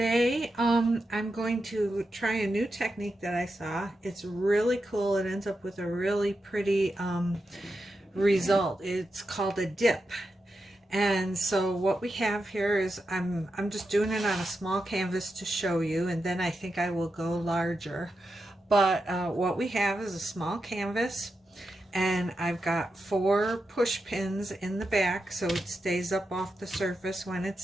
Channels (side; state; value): both; normal; correlation 0.88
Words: I'm going to try a new technique that I saw. It's really cool. It ends up with a really pretty result. It's called a dip. And so what we have here is I'm just doing it on a small canvas to show you, and then I think I will go larger. But what we have is a small canvas, and I've got 4 push pins in the back so it stays up off the surface when